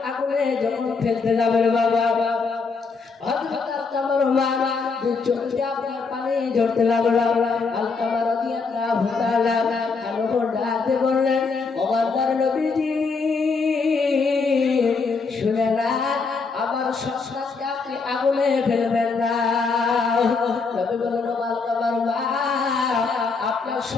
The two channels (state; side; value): quieter; right; 4.6 dB